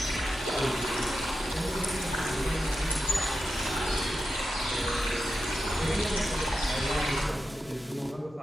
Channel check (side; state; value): both; normal; correlation 0.90